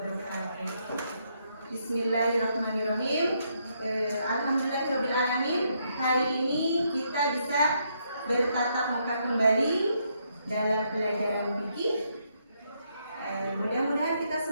Bismillahirrahmanirrahim. Alhamdulillahirabbil alamin. Hari ini kita bisa bertatap muka kembali dalam pelajaran fikih. Mudah-mudahan kita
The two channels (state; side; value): inverted; both; correlation -0.76